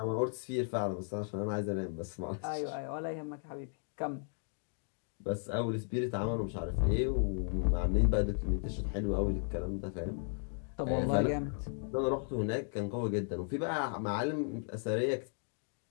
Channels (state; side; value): silent; right; 54 dB below the other